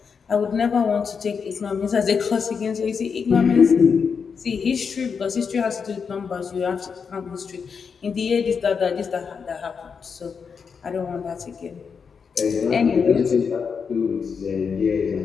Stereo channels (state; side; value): quieter; right; 6.0 dB